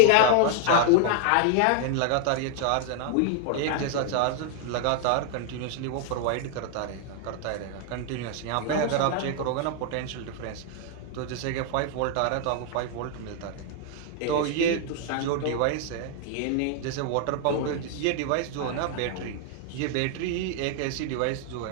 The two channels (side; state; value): both; different; correlation 0.00